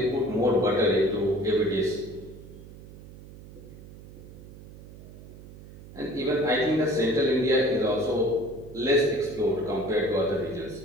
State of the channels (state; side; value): noise; right; hum, 17 dB below the sound